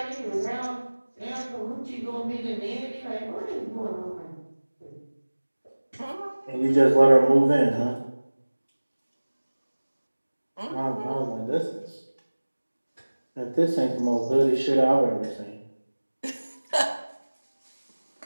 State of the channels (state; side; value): inverted; both; correlation -1.00